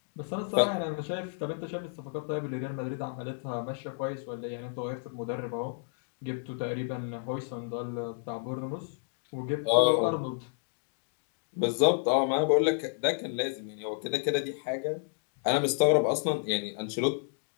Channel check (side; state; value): right; silent; digital silence